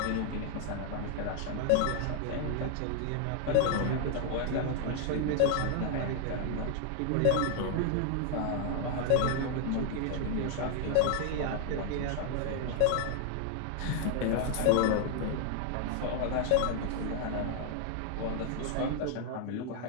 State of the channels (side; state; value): both; different; correlation 0.00